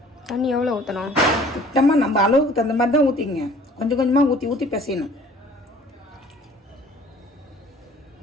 தண்ணி எவ்வளோ ஊற்றணும்? சுத்தமாக நம்ம அளவுக்கு தகுந்த மாதிரி தான் ஊற்றிங்க. கொஞ்சம் கொஞ்சமாக ஊற்றி ஊற்றி பிசையணும்.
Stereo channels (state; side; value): normal; both; correlation 0.52